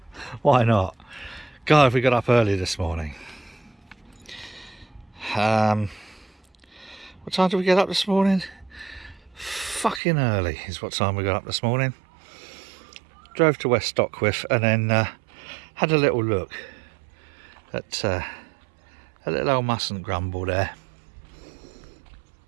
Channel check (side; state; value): left; drops out; at 10.0 s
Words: Why not? God, we got up early this morning. What time did we get up this morning? Fucking early is what time we got up this morning. Drove to West Stockwith and then had a little look at a little old MUSN Grumble there,